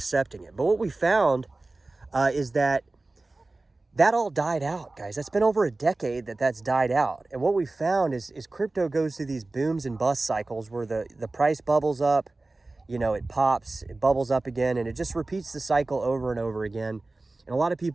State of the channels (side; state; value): left; quieter; 3.2 dB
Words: it. But what we found is that all died out, guys. That's been over a decade that's died out. And what we found is crypto goes through these booms and bust cycles where the price bubbles up, it pops, it bubbles up again, and it just repeats the cycle over and over again. And a lot of